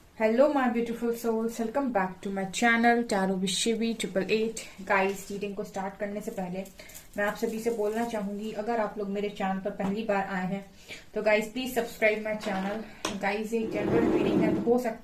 Hello my beautiful souls, welcome back to my channel Tarot Vishivi 888। Guys, reading को स्टार्ट करने से पहले मैं आप सभी से बोलना चाहूंगी, अगर आप लोग मेरे चैनल पर पहली बार आए हैं तो guys please subscribe my channel. Guys, एक जनरल रीडिंग है तो हो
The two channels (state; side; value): identical; both; correlation 1.00